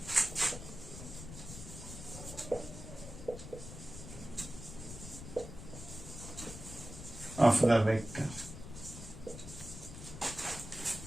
of the vector.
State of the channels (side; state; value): left; noise; rumble, 11 dB below the sound